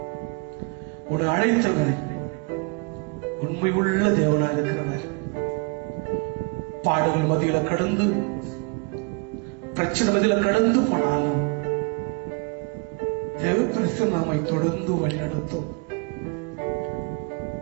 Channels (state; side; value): quieter; left; 32.3 dB